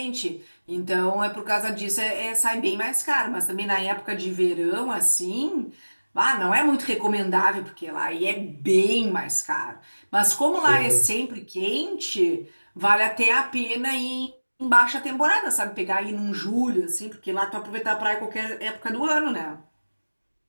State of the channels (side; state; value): both; inverted; correlation -1.00